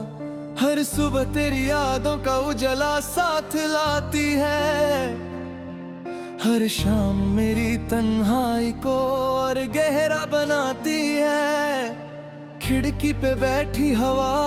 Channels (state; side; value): identical; both; correlation 1.00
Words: हर सुबह तेरी यादों का उजला साथ लाती है, हर शाम मेरी तन्हाई को और गहरा बनाती है। खिड़की पे बैठी हवा